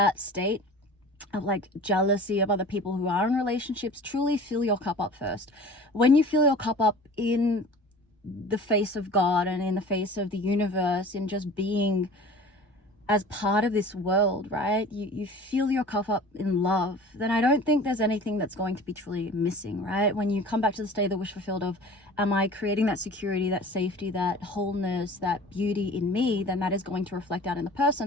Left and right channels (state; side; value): normal; both; correlation 0.42